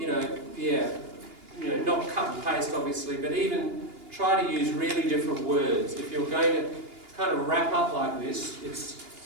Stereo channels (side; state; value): left; late; 2.8 ms